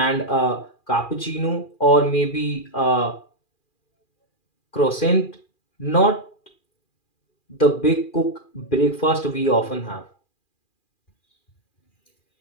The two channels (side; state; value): right; late; 2.4 ms